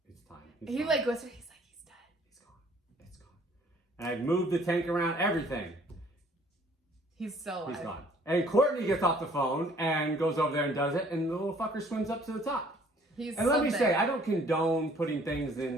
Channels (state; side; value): normal; both; correlation 0.58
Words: it's time. he like whispered, he's like, he's dead. He's gone. It's gone. And I moved the tank around, everything. He's still alive. He's gone. And Courtney gets off the phone and goes over there and does it, and the little fucker swims up to the top. And let me say, I don't condone putting things